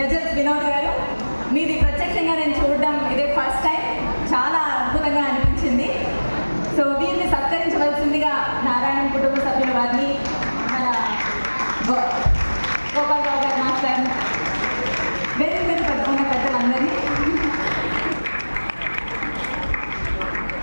Ghazals Vinod గారు, మీది ప్రత్యక్షంగా నేను చూడడం ఇదే ఫస్ట్ టైం, చాలా అద్భుతంగా అనిపించింది. సో వీరిని సత్కరించవలసిందిగా నారాయణ కుటుంబ సభ్యుల వారిని, మన గోపాలరావు గారు మాస్టర్, వేరే మీద ఉన్న పెద్దలందరినీ,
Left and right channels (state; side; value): inverted; both; correlation -1.00